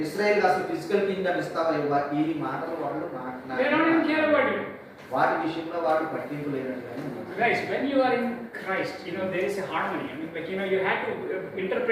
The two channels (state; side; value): identical; both; correlation 1.00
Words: ఇశ్రాయేల్ అసలు ఫిజికల్ కింగ్డమ్ ఇస్తావా, ఈ మాటలు వాళ్ళు మాట్లాడారు. వాటి విషయంలో వాళ్ళు పట్టింపు లేనట్టుగానే. Guys, when you are in Christ, there is a harmony. I mean, you have to